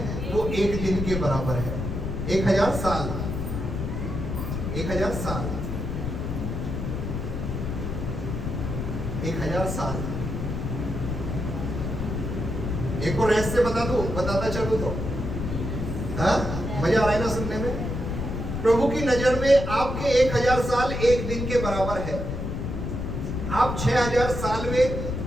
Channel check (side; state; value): left; noise; rumble, 3 dB below the sound